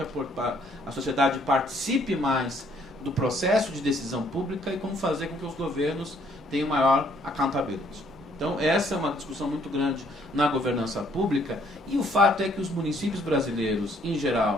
a sociedade participe mais do processo de decisão pública e como fazer com que os governos tenham maior accountability. Então essa é uma discussão muito grande na governança pública e o fato é que os municípios brasileiros, em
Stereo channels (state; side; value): normal; both; correlation 0.65